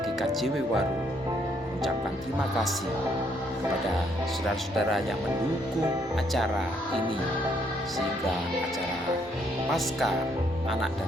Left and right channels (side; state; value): both; normal; correlation 0.71